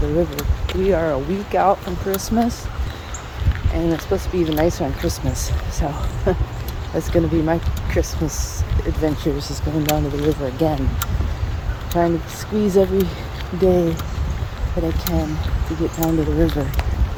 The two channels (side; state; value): both; identical; correlation 1.00